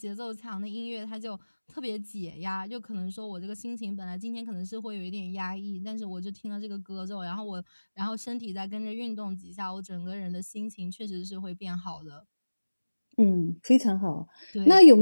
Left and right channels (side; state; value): both; inverted; correlation -1.00